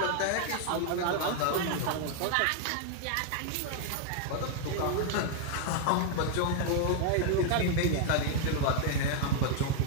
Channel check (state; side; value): different; both; correlation 0.00